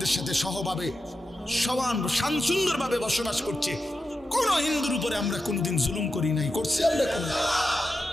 সাথে সহভাবে সমান সুন্দরভাবে বসবাস করছে। কোন হিন্দুর উপরে আমরা কোনোদিন জুলুম করি নাই, করছি আমরা কোন।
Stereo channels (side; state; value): both; normal; correlation 0.90